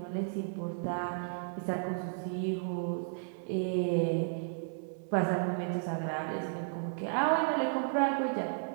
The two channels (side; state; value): left; silent; digital silence